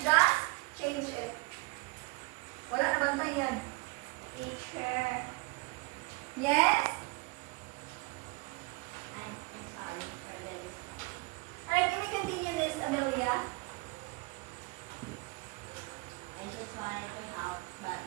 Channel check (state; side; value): quieter; left; 25.3 dB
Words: change it. Wala na bantay yan. Teacher, Yes? I'm sorry for the discussion. Alright, can we continue, Miss Amelia? I just wanted to help, but